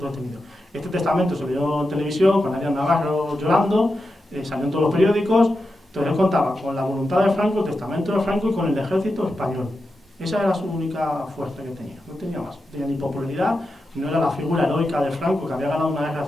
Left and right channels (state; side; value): normal; both; correlation 0.89